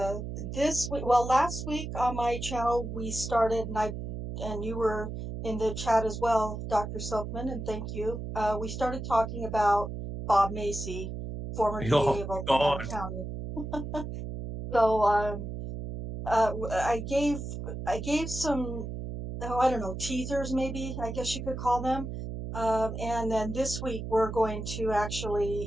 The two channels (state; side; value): noise; right; hum, 6 dB below the sound